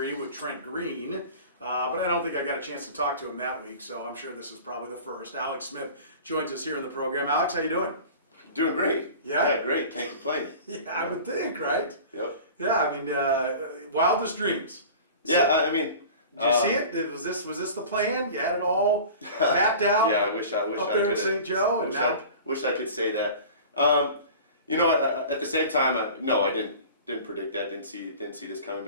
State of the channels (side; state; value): both; inverted; correlation -0.39